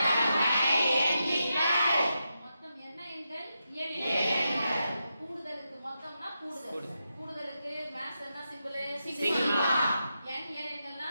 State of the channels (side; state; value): both; inverted; correlation -0.87